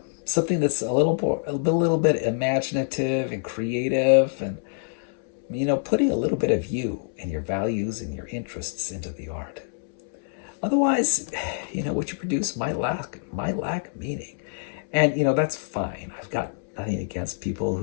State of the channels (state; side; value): silent; right; 61 dB below the other